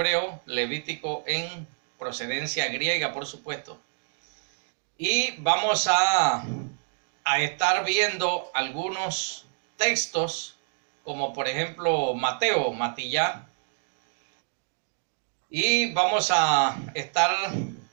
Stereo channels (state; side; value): silent; left; digital silence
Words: Levítico en procedencia griega, por supuesto. Y vamos a estar viendo algunos textos, como por ejemplo Matillá. Y vamos a estar,